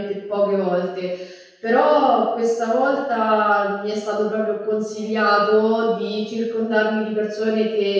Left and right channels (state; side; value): identical; both; correlation 1.00